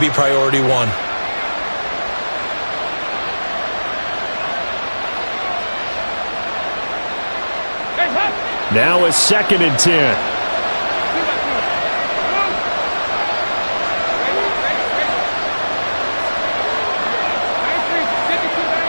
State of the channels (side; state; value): both; inverted; correlation -1.00